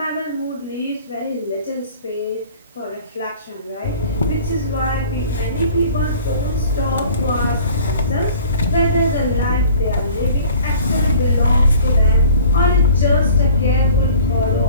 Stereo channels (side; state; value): both; inverted; correlation -0.47